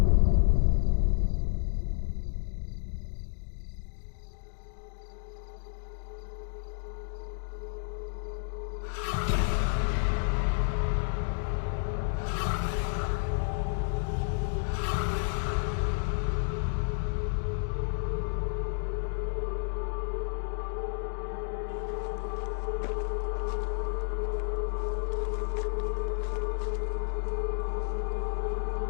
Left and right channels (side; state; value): right; silent; digital silence